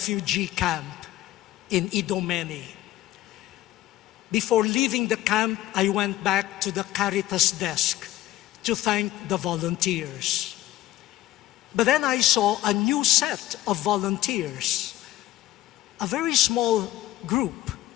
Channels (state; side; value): quieter; right; 14.8 dB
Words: camp in Idomeni. Before leaving the camp, I went back to the Caritas desk to thank the volunteers. But then I saw a new set of volunteers, a very small group,